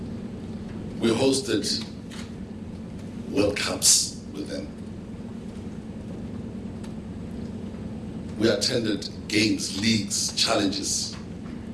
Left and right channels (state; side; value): identical; both; correlation 1.00